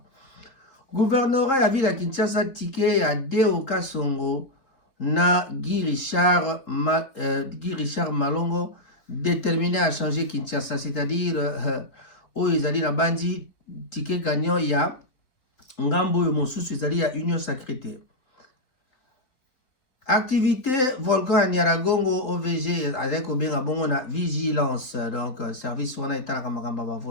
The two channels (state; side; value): late; right; 4.0 ms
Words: Gouvernorat ya ville ya Kinshasa tike ya Deo Kasongo na Guy Richard Malongo déterminé à changer Kinshasa, c'est-à-dire oyo ezali na bandi ticket gagnant ya ngambo oyo mosusu ezali ya Union Sacrée. Activité volcan ya Nyiragongo OVG azali kobenga bongo na vigilance, donc service wana etalaka makambo ya